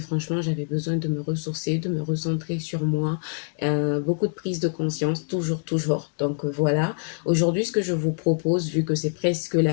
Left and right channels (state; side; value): silent; right; 62 dB below the other